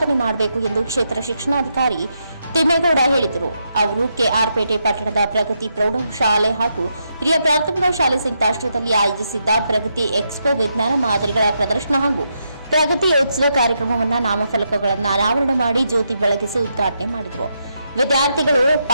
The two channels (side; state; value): both; inverted; correlation -0.81